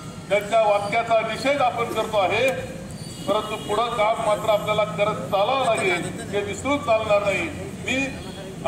त्यांच्या वाक्याचा निषेध आपण करतो आहे. परंतु पुढं काम मात्र आपल्याला करत चालावं लागेल, हे विसरून चालणार नाही. मी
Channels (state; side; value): identical; both; correlation 1.00